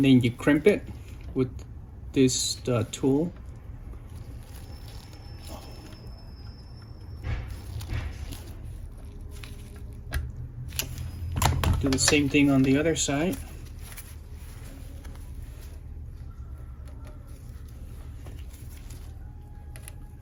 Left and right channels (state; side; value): identical; both; correlation 1.00